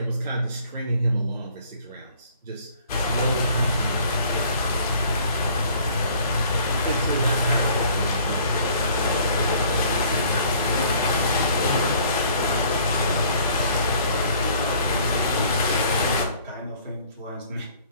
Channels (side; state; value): both; inverted; correlation -0.56